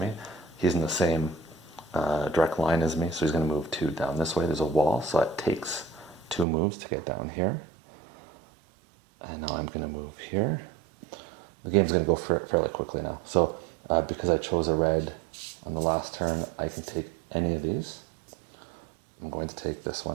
He's in the same direct line as me, so he's going to move 2 down this way. There's a wall, so it takes 2 moves to get down here. And now I'm going to move here. The game's going to go fairly quickly now. So because I chose a red on the last turn, I can take any of these. I'm going to take this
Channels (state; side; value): drops out; left; at 6.5 s